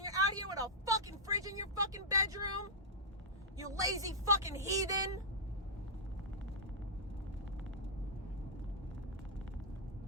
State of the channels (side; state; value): both; normal; correlation -0.09